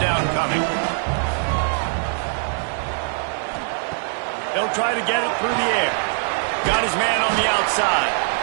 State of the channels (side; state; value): left; silent; digital silence